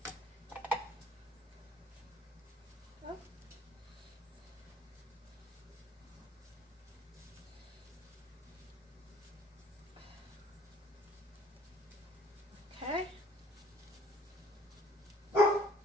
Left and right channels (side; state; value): both; normal; correlation 0.56